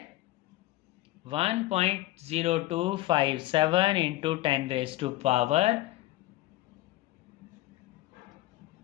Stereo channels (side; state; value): right; quieter; 17.2 dB